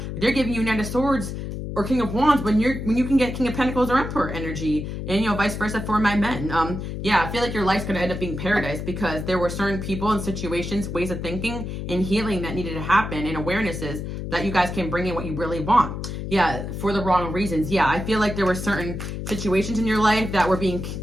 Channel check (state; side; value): noise; left; hum, 6 dB below the sound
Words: giving you Knight of Swords or King of Wands when you can get King of Pentacles or Emperor energy, and you know, vice versa for my men. I feel like your life's gonna end up being paradise because there were certain people and situations, ways of thinking and healing that needed to happen, and awarenesses that you guys can bring in what you really want. Yeah, for the wrong reasons. Yeah, I feel like there were certain situations in your life that were being,